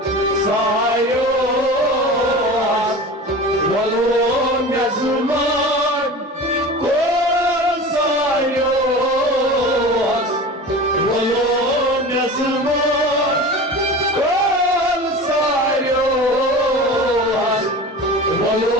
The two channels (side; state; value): both; normal; correlation 0.34